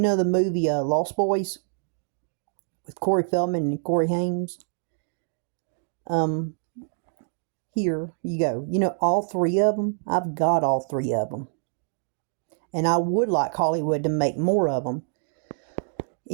the movie Lost Boys with Corey Feldman and Corey Haim? Um, Here you go. You know all three of them? I've got all three of them. And I would like Hollywood to make more of them.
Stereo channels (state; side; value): silent; left; digital silence